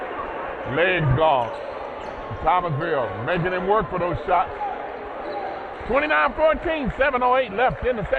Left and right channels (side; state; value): both; identical; correlation 1.00